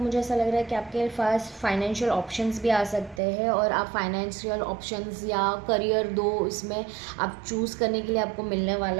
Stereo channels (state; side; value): drops out; left; at 3.2 s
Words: ऐसा लग रहा है कि आपके पास फाइनेंशियल ऑप्शंस भी आ सकते हैं और आप फाइनेंशियल ऑप्शंस या करियर दो इसमें आप चूज़ करने के लिए आपको मिलने